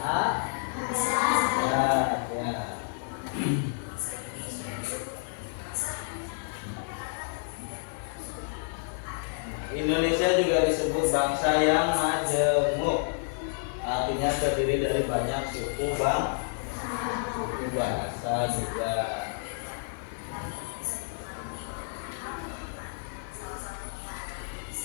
Indonesia juga disebut bangsa yang majemuk. Artinya terdiri dari banyak suku bahasa juga.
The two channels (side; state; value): right; silent; digital silence